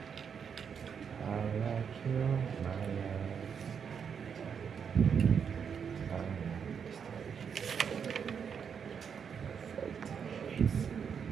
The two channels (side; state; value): left; quieter; 7.0 dB